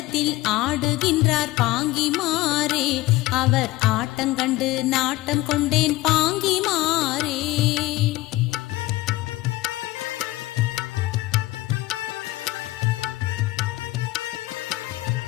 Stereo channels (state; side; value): quieter; right; 18.5 dB